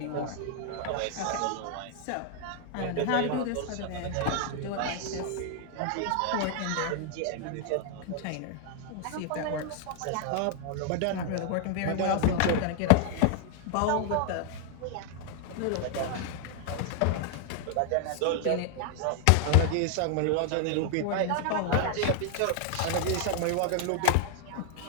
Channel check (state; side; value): different; both; correlation 0.00